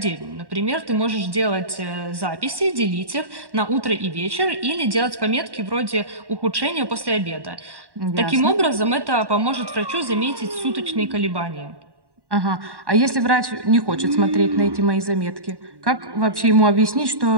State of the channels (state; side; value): late; left; 1.1 ms